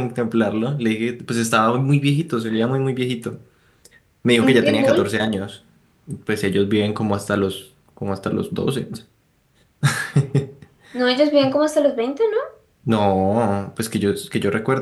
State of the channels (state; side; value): identical; both; correlation 1.00